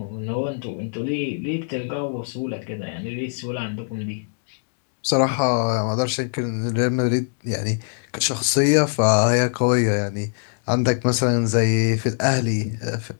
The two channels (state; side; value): silent; right; digital silence